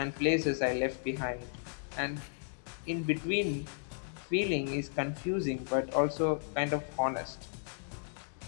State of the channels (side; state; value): right; silent; digital silence